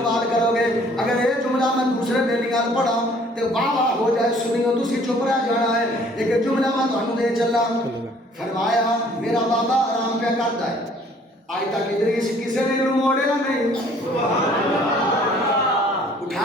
کرو گے اگر یہ جملہ میں دوسرے بیلیاں پڑھا تو واہ واہ ہو جائے سنیو تسی چپ رہ جانا ہے ایک جملہ میں تانوں دے چلا فرمایا میرا بابا آرام پہ کرتا ہے آج تک ادریس کسی نے موڑیا نہیں.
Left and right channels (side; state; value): both; normal; correlation 0.57